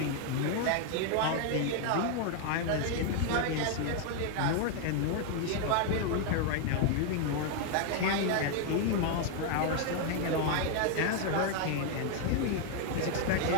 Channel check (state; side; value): different; both; correlation 0.00